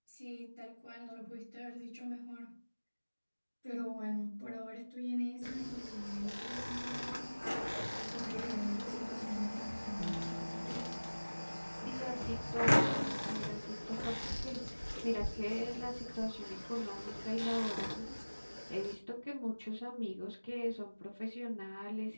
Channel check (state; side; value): inverted; both; correlation -1.00